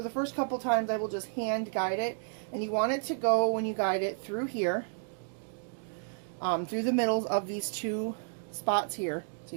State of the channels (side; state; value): left; silent; digital silence